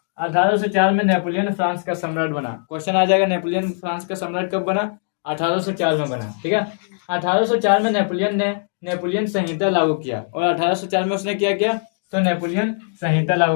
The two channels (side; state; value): right; silent; digital silence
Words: 1804 में नेपोलियन फ्रांस का सम्राट बना, क्वेश्चन आ जाएगा नेपोलियन फ्रांस का सम्राट कब बना, 1804 में बना। ठीक है, 1804 में नेपोलियन ने नेपोलियन संहिता लागू किया, और 1804 में उसने क्या किया, तो नेपोलियन संहिता